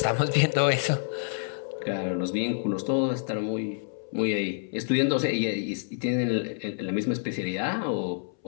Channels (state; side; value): silent; right; 60 dB below the other